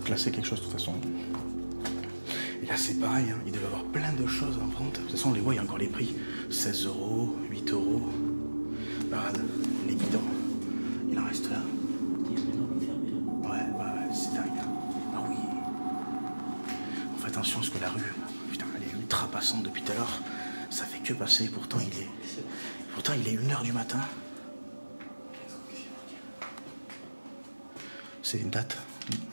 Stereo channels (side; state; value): both; inverted; correlation -1.00